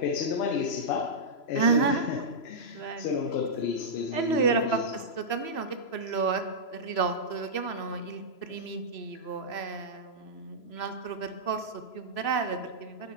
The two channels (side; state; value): right; late; 3.0 ms